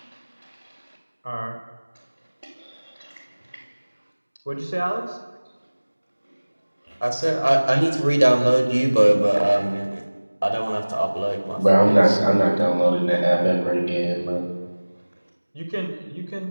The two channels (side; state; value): both; inverted; correlation -1.00